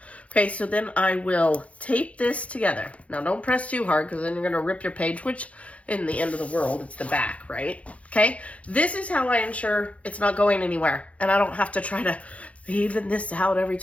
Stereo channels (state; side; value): late; right; 0.064 ms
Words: Okay, so then I will tape this together. Now don't press too hard, because then you're going to rip your page, which in the end of the world, it's the back, right? Okay, this is how I ensure it's not going anywhere and I don't have to try to even this out every